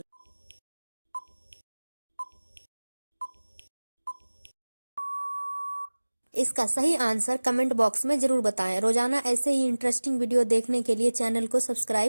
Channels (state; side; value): inverted; both; correlation -1.00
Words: इसका सही आंसर कमेंट बॉक्स में जरूर बताएं। रोजाना ऐसे ही इंटरेस्टिंग वीडियो देखने के लिए चैनल को